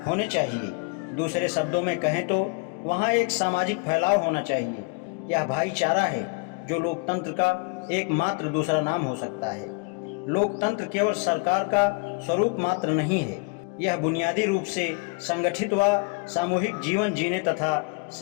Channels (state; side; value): quieter; right; 29.6 dB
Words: होने चाहिए। दूसरे शब्दों में कहें तो वहाँ एक सामाजिक फैलाव होना चाहिए। यह भाईचारा है जो लोकतंत्र का एकमात्र दूसरा नाम हो सकता है। लोकतंत्र केवल सरकार का स्वरूप मात्र नहीं है, यह बुनियादी रूप से संगठित व सामूहिक जीवन जीने तथा